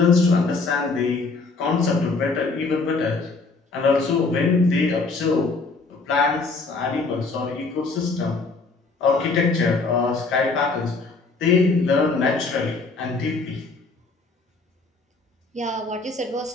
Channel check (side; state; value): right; quieter; 3.9 dB